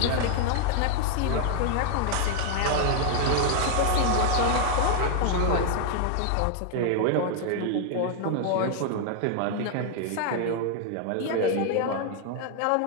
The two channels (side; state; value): both; different; correlation 0.00